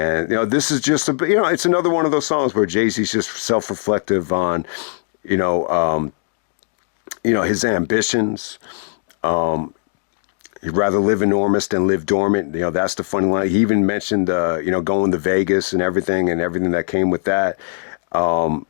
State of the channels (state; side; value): silent; right; digital silence